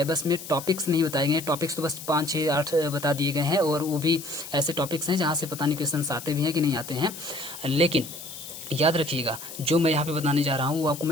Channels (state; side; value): noise; left; hiss, 12 dB below the sound